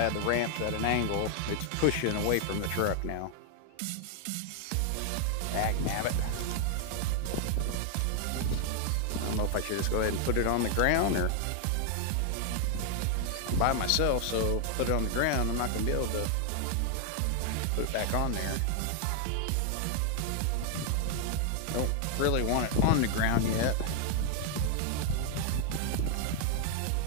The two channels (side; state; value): both; different; correlation 0.00